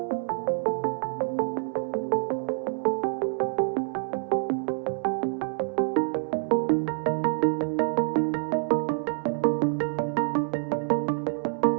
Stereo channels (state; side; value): silent; left; 60 dB below the other